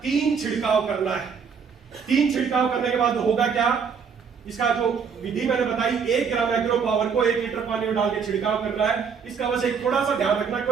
3 छिड़काव करना है। 3 छिड़काव करने के बाद होगा क्या, इसका जो विधि मैंने बताई, 1 ग्राम एग्रो पावर को 1 लीटर पानी में डाल के छिड़काव करना है। इसका बस एक थोड़ा सा ध्यान रखना,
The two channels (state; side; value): quieter; left; 6.3 dB